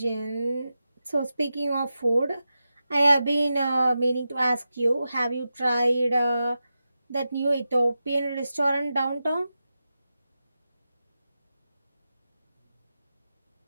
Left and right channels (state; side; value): inverted; both; correlation -0.91